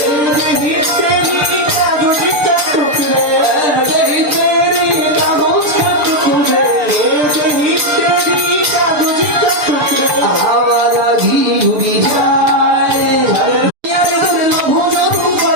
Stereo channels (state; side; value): late; left; 6.7 ms